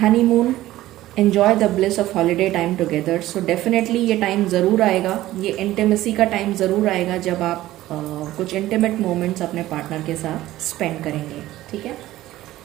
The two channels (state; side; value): quieter; left; 15.5 dB